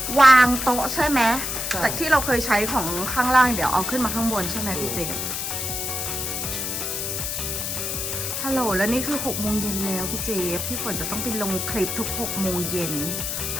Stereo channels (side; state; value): left; noise; hiss, 2 dB below the sound